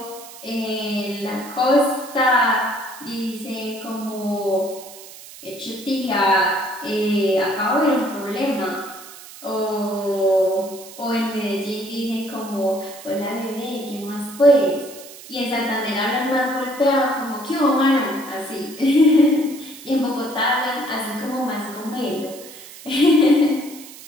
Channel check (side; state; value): right; noise; hiss, 17 dB below the sound